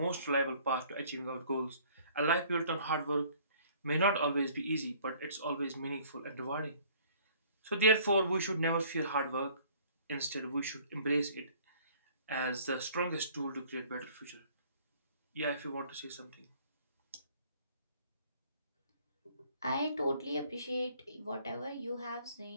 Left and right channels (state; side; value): inverted; both; correlation -0.56